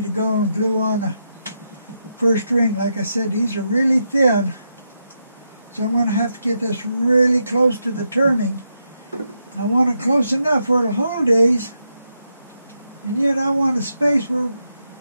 to go and glue on the first ring. Like I said, these are really thin, so I'm going to have to get this really close to the turning. I want it close enough where it'll hold these, and yet I want a space where,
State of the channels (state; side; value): inverted; both; correlation -0.83